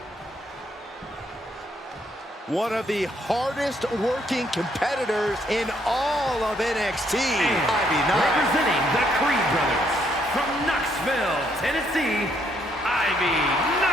One of the hardest working competitors in all of NXT, Ivy Nile. Representing the Creed brothers from Knoxville, Tennessee, Ivy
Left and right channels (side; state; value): both; normal; correlation 0.71